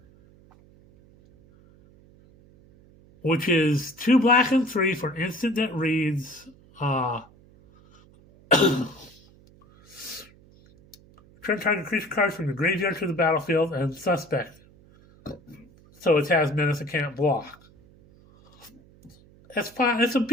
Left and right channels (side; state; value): right; noise; hum, 27 dB below the sound